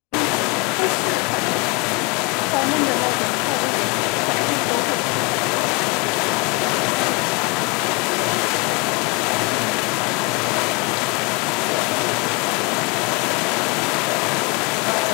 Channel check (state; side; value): quieter; right; 27.4 dB